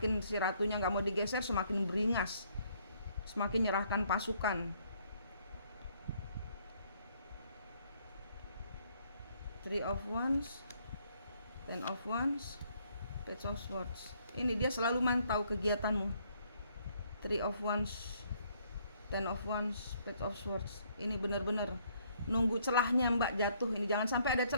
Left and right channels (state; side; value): inverted; both; correlation -0.67